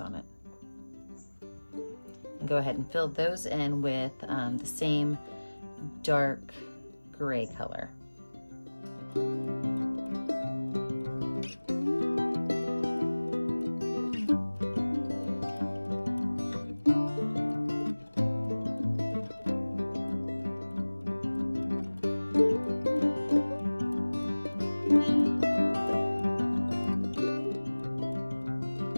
it. And go ahead and fill those in with the same dark gray color.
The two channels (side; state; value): both; inverted; correlation -1.00